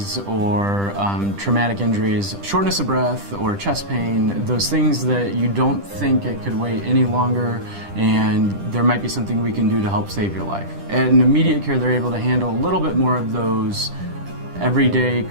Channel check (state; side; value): late; left; 10 ms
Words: or traumatic injuries, shortness of breath or chest pain, those things that you don't think it could wait any longer and there might be something we can do to help save your life. At an immediate care, they're able to handle a little bit more of those everyday